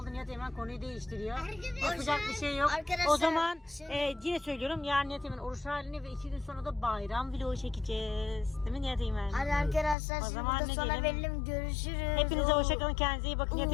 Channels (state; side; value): drops out; right; at 10.0 s